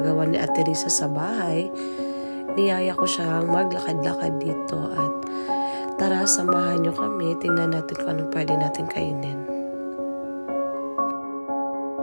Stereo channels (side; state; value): both; inverted; correlation -1.00